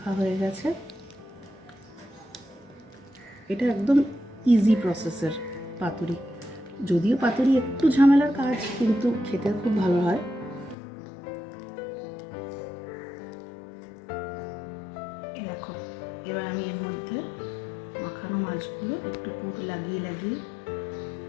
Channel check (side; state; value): right; drops out; at 10.8 s